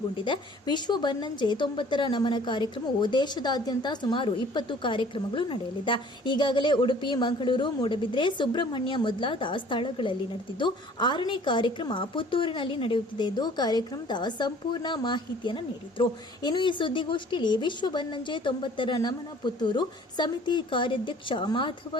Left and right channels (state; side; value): normal; both; correlation 0.52